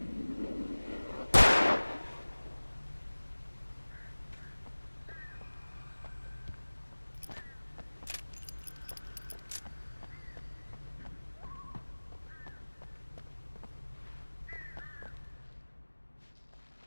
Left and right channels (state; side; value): inverted; both; correlation -1.00